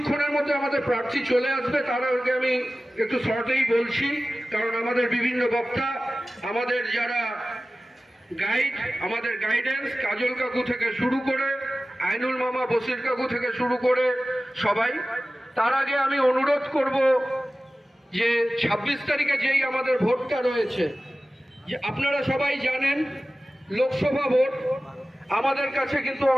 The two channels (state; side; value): normal; both; correlation 0.96